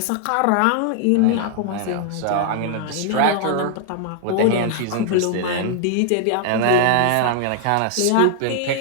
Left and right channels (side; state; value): both; different; correlation 0.00